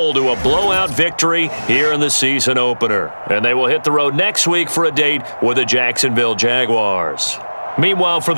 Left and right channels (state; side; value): inverted; both; correlation -1.00